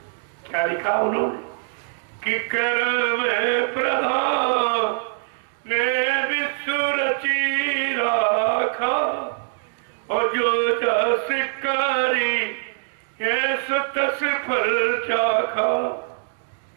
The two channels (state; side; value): silent; left; digital silence